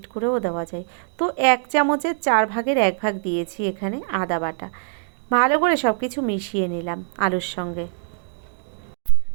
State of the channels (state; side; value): silent; left; digital silence